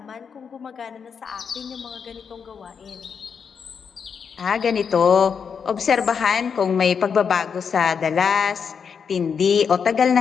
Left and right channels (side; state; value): right; quieter; 6.5 dB